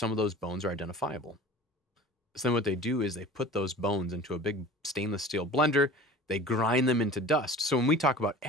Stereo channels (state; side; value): normal; both; correlation 0.41